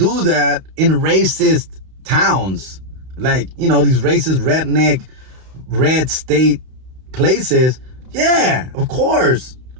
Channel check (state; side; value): late; left; 32 ms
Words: that in racist towns. like, you know, these racist redneck red state places, yeah, of course